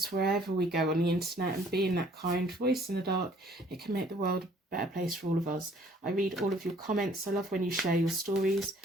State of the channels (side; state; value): both; normal; correlation 0.59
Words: wherever we go on the internet and being that kind voice in the dark, it can make the world a better place for all of us. I read all of your comments. I love when you share your stories.